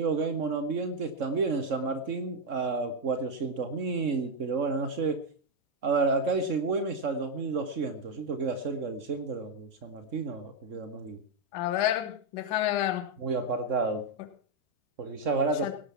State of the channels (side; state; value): left; late; 3.6 ms